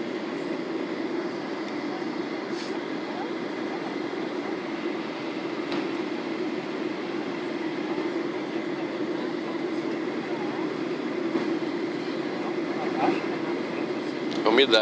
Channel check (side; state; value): both; identical; correlation 1.00